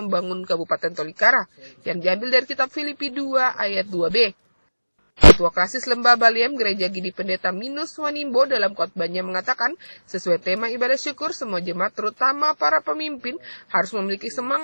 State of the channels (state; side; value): inverted; both; correlation -1.00